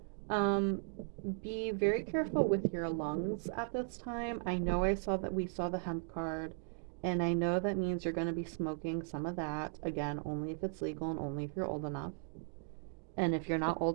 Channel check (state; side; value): silent; left; digital silence